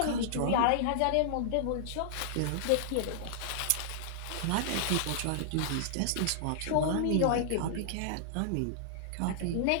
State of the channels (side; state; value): both; different; correlation -0.01